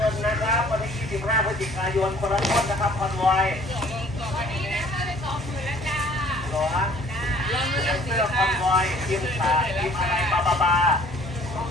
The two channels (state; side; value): normal; both; correlation 0.54